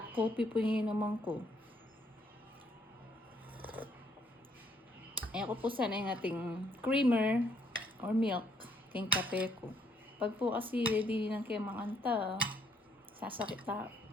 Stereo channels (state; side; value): normal; both; correlation 0.69